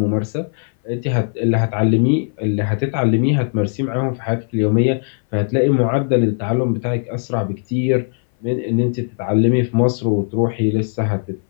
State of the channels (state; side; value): silent; right; 60 dB below the other